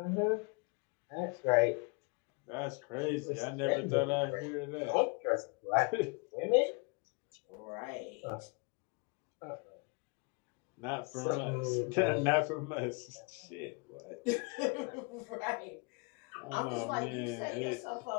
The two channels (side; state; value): right; quieter; 31.6 dB